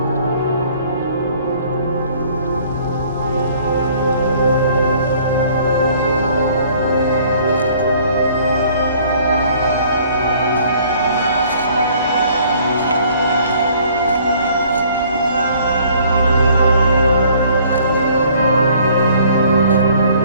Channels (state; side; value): inverted; both; correlation -0.57